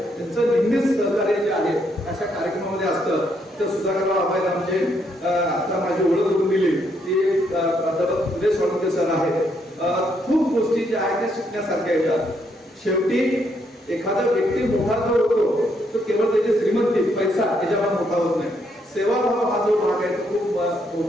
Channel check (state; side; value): normal; both; correlation 0.74